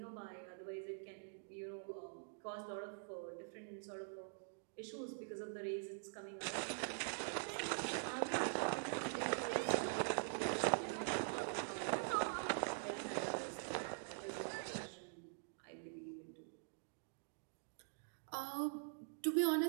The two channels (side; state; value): left; silent; digital silence